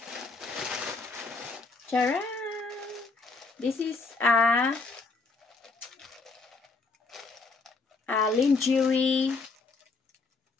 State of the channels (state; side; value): quieter; right; 3.9 dB